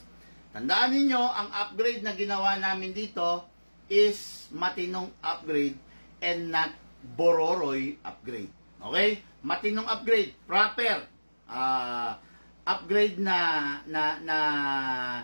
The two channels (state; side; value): inverted; both; correlation -1.00